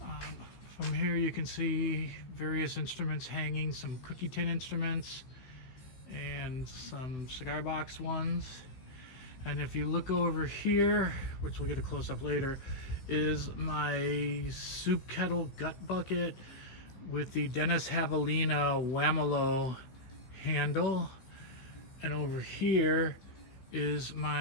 From here you can see various instruments hanging, some cookie tin instruments and some cigar box ones. And if you look over here, which we'll get a close-up later, is my soup kettle gut bucket with the Dennis Javelina Whamelo handle. And over here is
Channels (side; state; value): right; late; 16 ms